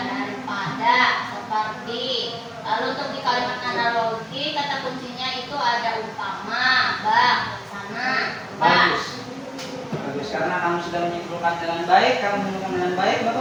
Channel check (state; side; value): identical; both; correlation 1.00